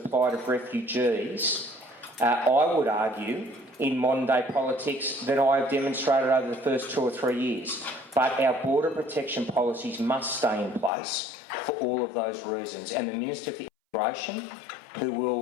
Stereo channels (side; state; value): right; drops out; at 10.9 s